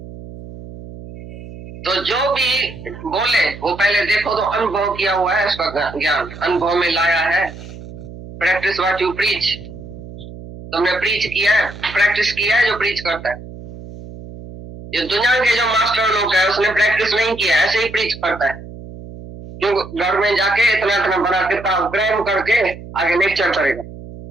तो जो भी बोले वो पहले देखो तो अनुभव किया हुआ है, उसका ज्ञान अनुभव में लाया है। Practice what you preach. तुमने प्रीच किया है, प्रैक्टिस किया है जो प्रीच करता है। ये दुनिया के जो मास्टर लोग है उसने प्रैक्टिस नहीं किया, ऐसे ही प्रीच करता है। क्यों? घर में जाके इतना इतना बड़ा किताब क्रैम करके आगे लेक्चर करेगा।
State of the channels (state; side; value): noise; right; hum, 14 dB below the sound